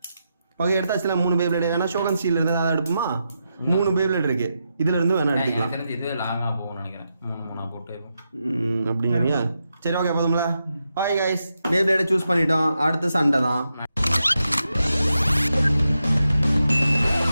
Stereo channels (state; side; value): inverted; both; correlation -0.87